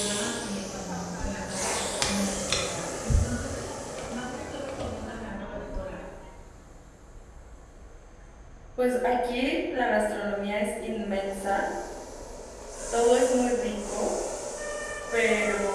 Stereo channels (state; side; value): identical; both; correlation 1.00